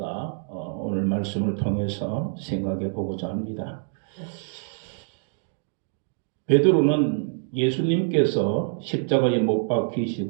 오늘 말씀을 통해서 생각해 보고자 합니다. 베드로는 예수님께서 십자가에 못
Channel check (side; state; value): left; silent; 61 dB below the other